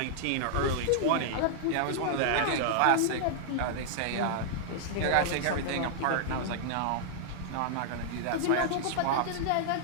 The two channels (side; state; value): both; different; correlation -0.01